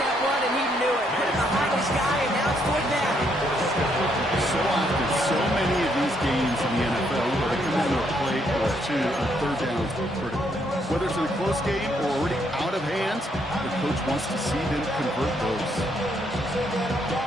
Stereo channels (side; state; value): both; normal; correlation 0.73